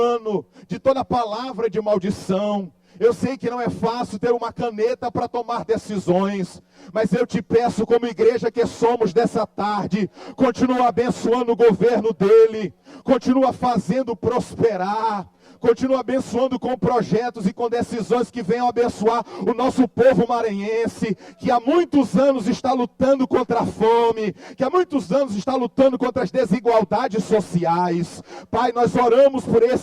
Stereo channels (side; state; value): both; identical; correlation 1.00